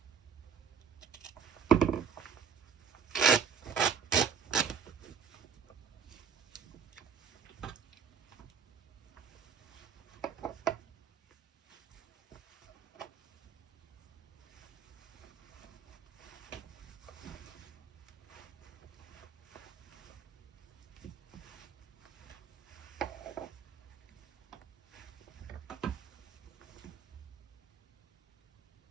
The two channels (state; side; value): quieter; left; 6.9 dB